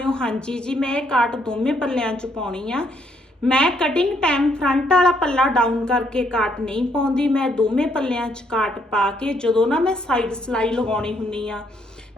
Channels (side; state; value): both; normal; correlation 0.71